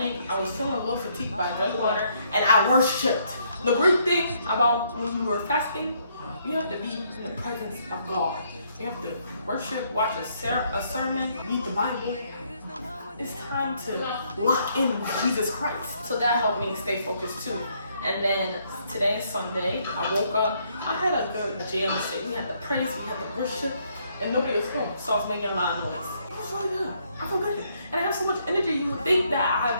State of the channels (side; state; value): both; inverted; correlation -0.70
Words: I was feeling a little fatigued, but I drank water and I worshipped. The great thing about when you are fasting, you have to be in the presence of God. You have to worship, watch a sermon, read the Bible. It's time to lock in with Jesus Christ. So that helped me stay focused too. And then today is Sunday. I woke up. I had a good jam. We had the praise, we had the worship, and nobody was home. So I was making a lot of noise. It was really good. I feel good. And I have so much energy, you would think that I've